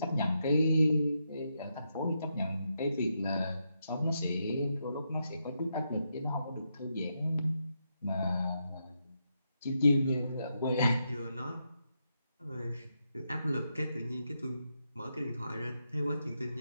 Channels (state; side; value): inverted; both; correlation -0.82